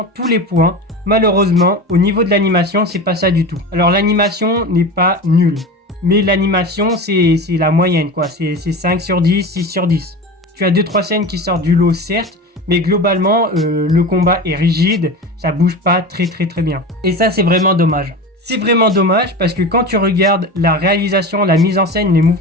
tous les points. Malheureusement, au niveau de l'animation, c'est pas ça du tout. Alors l'animation n'est pas nulle, mais l'animation c'est la moyenne quoi, c'est 5 sur 10, 6 sur 10. Tu as 2-3 scènes qui sortent du lot certes, mais globalement le combat est rigide, ça bouge pas très bien. Et ça c'est vraiment dommage. C'est vraiment dommage parce que quand tu regardes la réalisation, la mise en scène, les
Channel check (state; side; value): normal; both; correlation 0.29